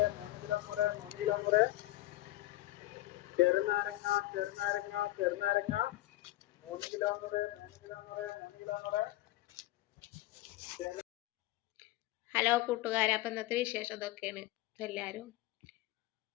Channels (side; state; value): right; quieter; 16.8 dB